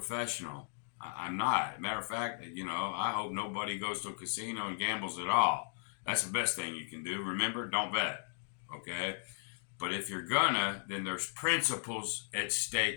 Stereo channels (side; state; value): right; silent; digital silence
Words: I'm not. Matter of fact, I hope nobody goes to a casino and gambles at all. That's the best thing you can do. Remember, don't bet. Okay? But if you're gonna, then there's principles at